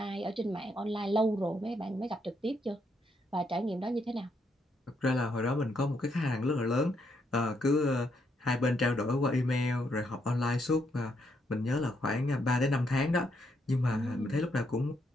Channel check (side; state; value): both; normal; correlation 0.76